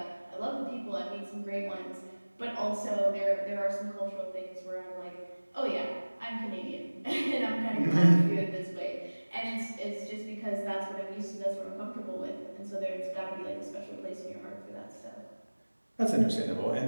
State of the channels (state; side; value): inverted; both; correlation -1.00